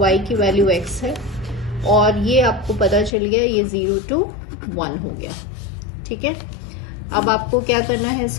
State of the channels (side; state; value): right; drops out; at 3.1 s